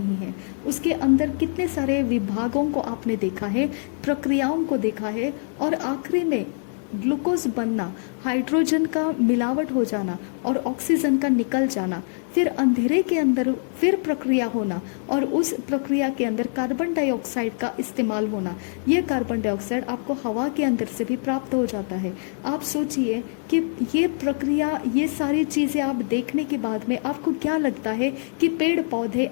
है, उसके अंदर कितने सारे विभागों को आपने देखा है, प्रक्रियाओं को देखा है और आखिरी में ग्लूकोज बनना, हाइड्रोजन का मिलावट हो जाना और ऑक्सीजन का निकल जाना, फिर अंधेरे के अंदर फिर प्रक्रिया होना और उस प्रक्रिया के अंदर कार्बन डाइऑक्साइड का इस्तेमाल होना। ये कार्बन डाइऑक्साइड आपको हवा के अंदर से भी प्राप्त हो जाता है। आप सोचिए कि ये प्रक्रिया, ये सारी चीज़ें आप देखने के बाद में आपको क्या लगता है कि पेड़ पौधे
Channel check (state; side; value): silent; right; digital silence